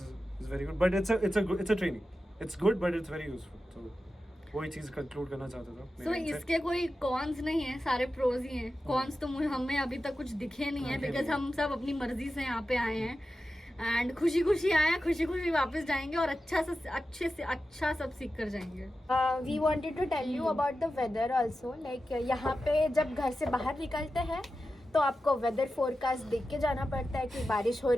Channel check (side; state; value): both; normal; correlation 0.92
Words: very good, but it's a training, it's good but it's very useful. तो वही चीज़ कंक्लूड करना चाहता था। So, इसके कोई कॉन्स नहीं है, सारे प्रोज ही हैं। कॉन्स तो हमें अभी तक कुछ दिखे नहीं है, बिकॉज हम सब अपनी मर्जी से यहाँ पे आए हैं एंड खुशी खुशी आए हैं, खुशी खुशी वापस जाएंगे और अच्छे से अच्छा सब सीख कर जाएंगे। We wanted to tell you about the weather also, like यहाँ पे जब घर से बाहर निकलते हैं तो आपको वेदर फोरकास्ट देख के जाना पड़ता है कि बारिश हो